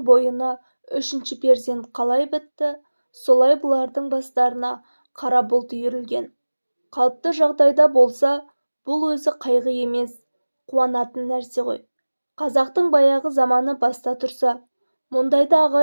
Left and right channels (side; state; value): both; inverted; correlation -1.00